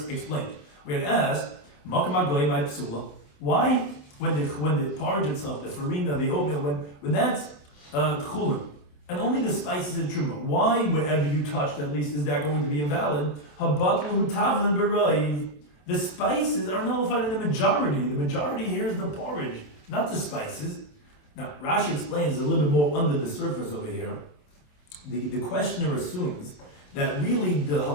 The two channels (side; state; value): right; late; 28 ms